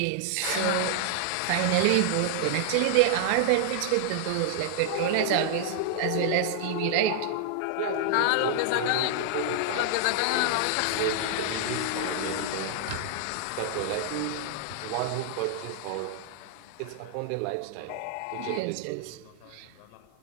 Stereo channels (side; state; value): both; different; correlation -0.01